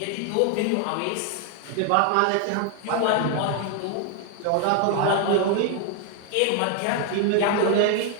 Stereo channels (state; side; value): different; both; correlation 0.00